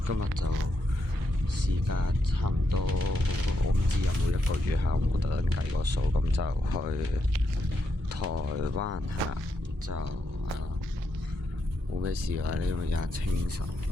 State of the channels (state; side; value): normal; both; correlation 0.82